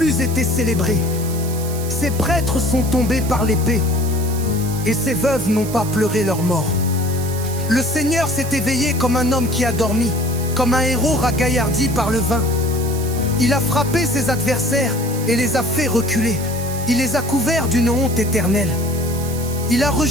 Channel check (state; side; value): noise; right; hiss, 12 dB below the sound